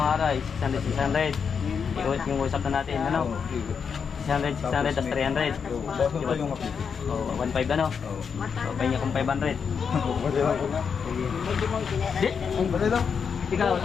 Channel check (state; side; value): quieter; right; 6.4 dB